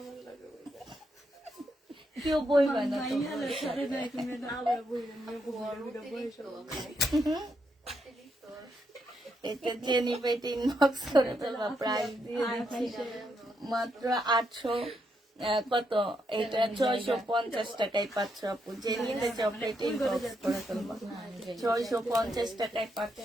কেউ বইবা না এটা জেনিপে ইনবক্স করে ফেলবা, প্রাইস দিয়ে দিচ্ছি মাত্র 800 কত, এটা 650 টাকায় পাচ্ছ আপু। যে নিতে চাও পেটে ইনবক্স করে ফেলবা, 650 টাকায় পাচ্ছ।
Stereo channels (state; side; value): normal; both; correlation 0.79